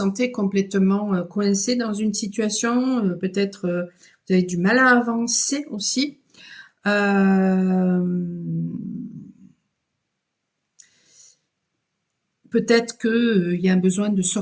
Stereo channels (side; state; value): both; identical; correlation 1.00